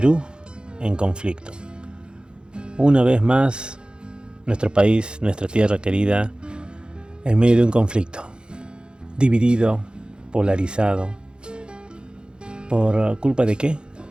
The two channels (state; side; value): late; left; 0.050 ms